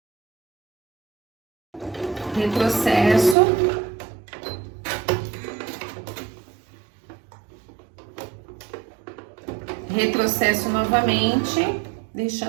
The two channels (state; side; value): drops out; left; at 3.4 s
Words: Retrocesso. Retrocesso novamente,